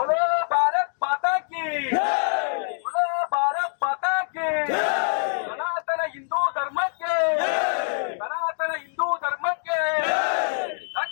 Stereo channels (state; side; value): silent; right; digital silence